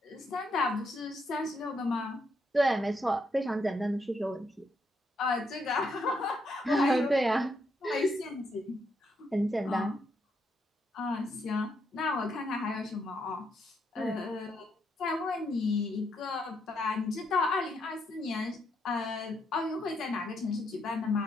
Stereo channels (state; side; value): normal; both; correlation 0.77